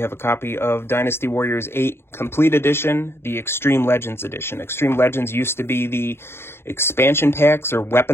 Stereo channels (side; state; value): right; late; 0.12 ms